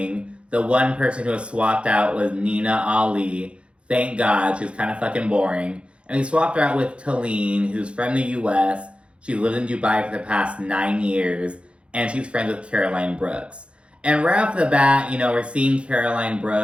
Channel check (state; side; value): late; left; 0.059 ms